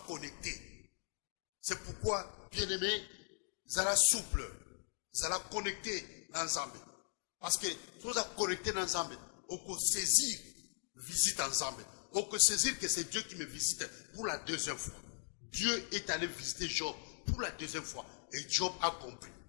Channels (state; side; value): silent; right; digital silence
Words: connecté. C'est pourquoi, bien-aimé, zala souple, zala connecté ensemble. Parce que nous avons connecté ensemble, on peut saisir, visite ensemble. On peut saisir que c'est Dieu qui me visite pour la deuxième fois. Dieu est allé visiter Job pour la deuxième fois. Et Job a compris.